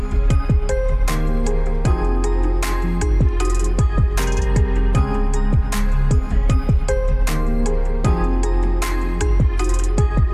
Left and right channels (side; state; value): both; identical; correlation 1.00